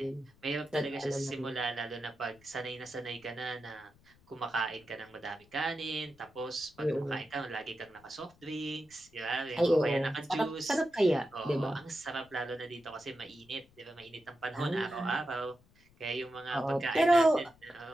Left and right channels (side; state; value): left; noise; rumble, 29 dB below the sound